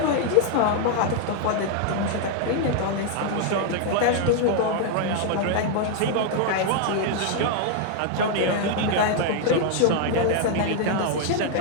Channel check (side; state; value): both; different; correlation 0.00